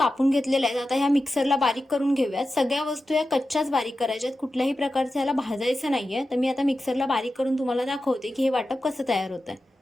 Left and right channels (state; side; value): normal; both; correlation 0.92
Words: घेतलेल्या आहेत। आता ह्या मिक्सरला बारीक करून घेऊयात। सगळ्या वस्तू या कच्च्याच बारीक करायच्यात, कुठल्याही प्रकारचं याला भाजायचं नाहीये। तर मी आता मिक्सरला बारीक करून तुम्हाला दाखवते की हे वाटप कसं तयार होतंय।